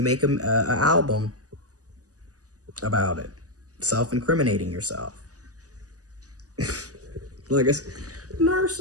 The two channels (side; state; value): left; late; 0.67 ms